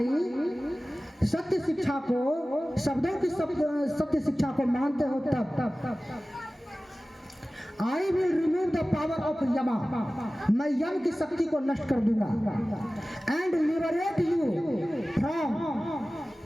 सत्य शिक्षा को, शब्दों की सत्य शिक्षा को मानते हो तब। I will remove the power of यमा। मैं यम की शक्ति को नष्ट कर दूंगा। And liberate you from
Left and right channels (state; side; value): normal; both; correlation 0.97